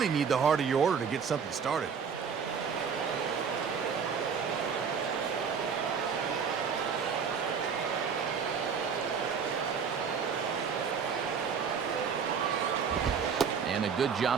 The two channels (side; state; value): left; quieter; 6.4 dB